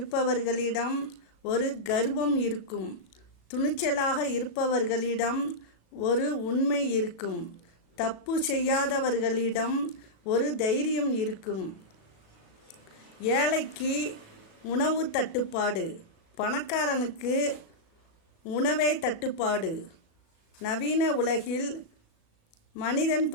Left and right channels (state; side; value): late; right; 37 ms